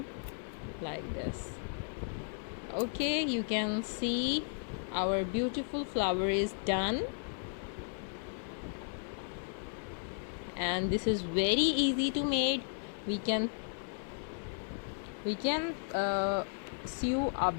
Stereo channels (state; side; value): silent; right; digital silence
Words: like this. Okay, you can see our beautiful flower is done, and this is very easy to make. We can sew a